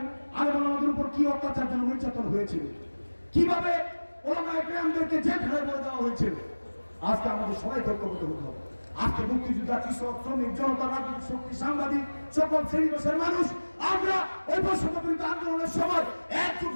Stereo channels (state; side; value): inverted; both; correlation -1.00